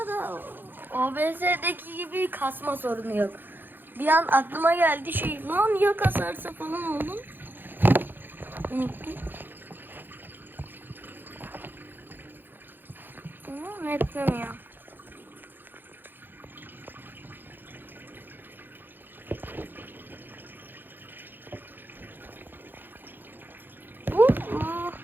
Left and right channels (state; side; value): late; left; 0.094 ms